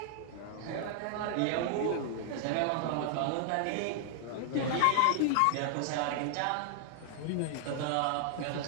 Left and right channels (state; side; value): different; both; correlation 0.00